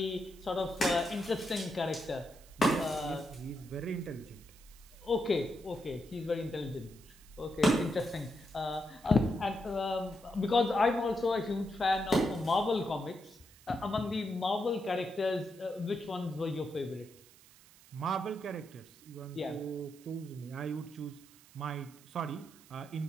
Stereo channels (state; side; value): noise; right; hiss, 24 dB below the sound